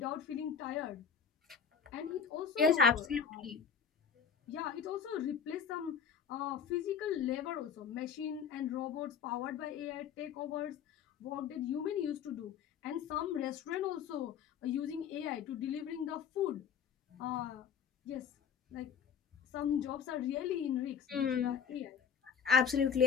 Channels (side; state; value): right; quieter; 7.1 dB